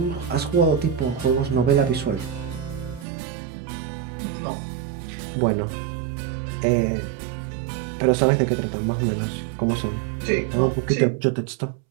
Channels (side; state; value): left; drops out; at 3.1 s